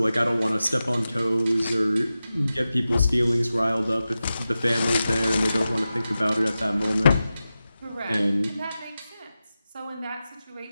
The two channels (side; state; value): both; inverted; correlation -0.93